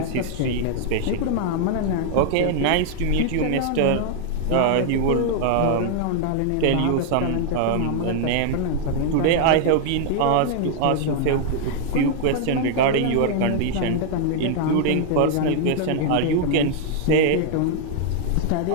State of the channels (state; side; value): different; both; correlation 0.00